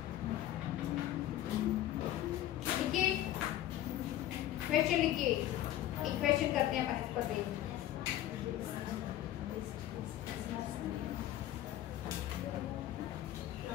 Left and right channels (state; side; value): quieter; right; 13.1 dB